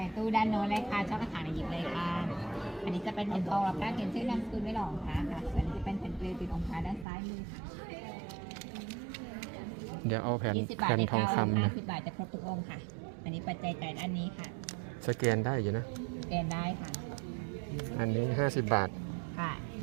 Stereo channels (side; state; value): left; drops out; at 7.1 s